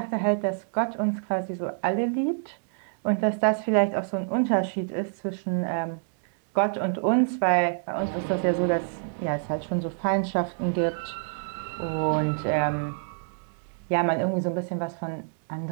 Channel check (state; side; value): silent; left; digital silence